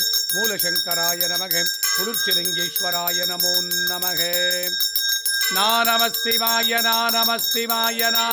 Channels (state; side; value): identical; both; correlation 1.00